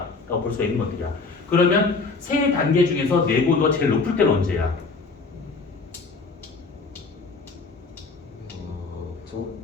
볼 수가 있는 것들이야. 그러면 세 단계 중에서 내부 온도가 제일 높을 때는 언제야?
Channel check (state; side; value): quieter; right; 4.2 dB